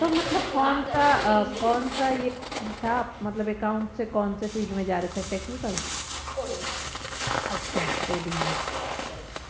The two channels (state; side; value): identical; both; correlation 1.00